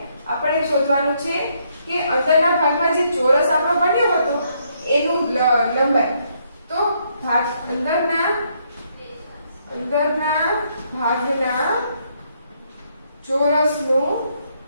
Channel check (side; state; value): both; inverted; correlation -0.73